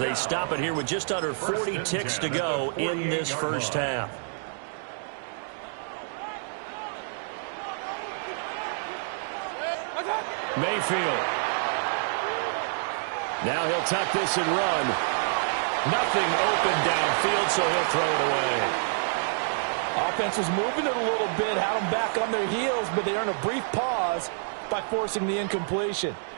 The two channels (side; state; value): left; silent; digital silence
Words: stop it here with just under 40 ticks to go in this first half. Mayfield. Now he'll tuck this and run. Nothing open downfield, so he'll throw it away. Offense was moving it a little bit, had them back on their heels, but they earned a brief pause by forcing the incompletion.